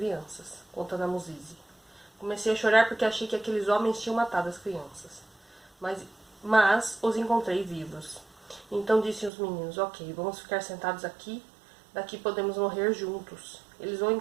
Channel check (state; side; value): drops out; left; at 9.3 s